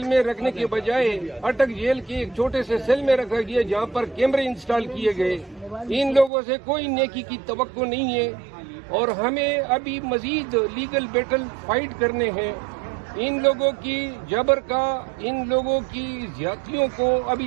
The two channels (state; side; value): drops out; left; at 6.3 s